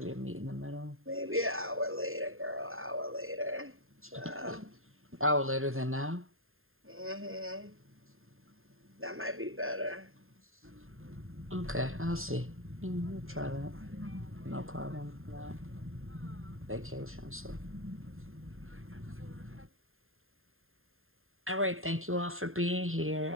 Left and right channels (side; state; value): left; late; 0.61 ms